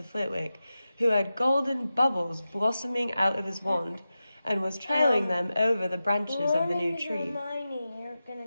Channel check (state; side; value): inverted; both; correlation -0.93